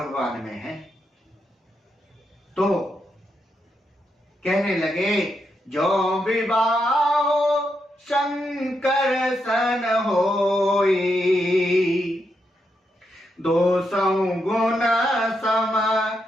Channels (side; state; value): both; normal; correlation 0.83